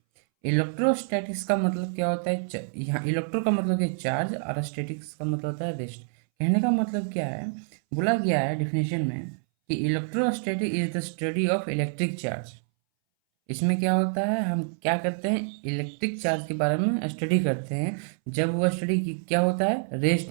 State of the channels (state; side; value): silent; left; 60 dB below the other